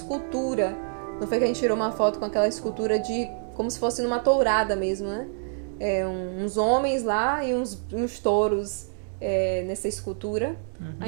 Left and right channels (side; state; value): left; silent; digital silence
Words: Não foi que a gente tirou uma foto com aquela escultura como se fosse numa tourada mesmo, né? Uns homens lá e uns touros nessa escultura. A